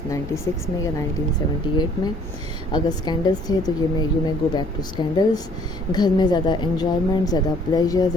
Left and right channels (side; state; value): both; normal; correlation 0.59